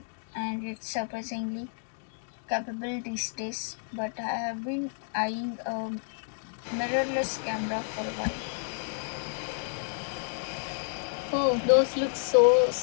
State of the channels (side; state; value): right; silent; 58 dB below the other